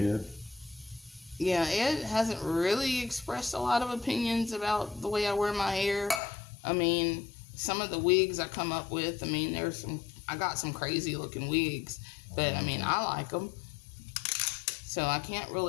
Yeah, Ed hasn't really expressed a lot of opinions about the way I wear my hair. I mean, some of the wigs I come up with, I got some crazy looking wigs, but I like them. So I can't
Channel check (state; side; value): drops out; right; at 6.2 s